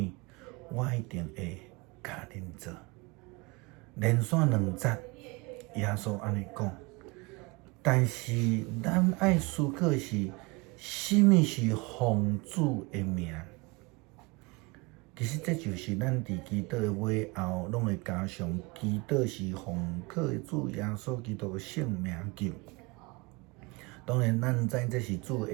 我一定会甲恁做。连续2节，耶稣安尼讲。但是咱爱思考是，甚物是奉主的名？其实这就是咱伫祈祷的尾后，拢会加上祈祷是奉靠主耶稣基督的圣名求。当然，咱知这是主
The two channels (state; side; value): quieter; left; 26.5 dB